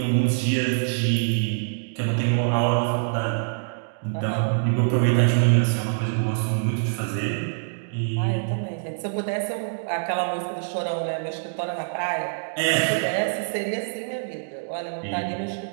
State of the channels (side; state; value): left; silent; digital silence